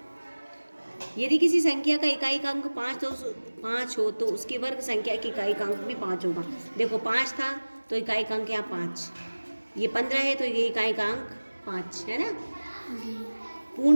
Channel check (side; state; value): both; inverted; correlation -1.00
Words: यदि किसी संख्या का इकाई का अंक 5 हो तो उसकी वर्ग संख्या की इकाई का अंक भी 5 होगा। देखो 5 था तो इकाई का अंक यहाँ 5, ये 15 है तो ये इकाई का अंक 5 है ना।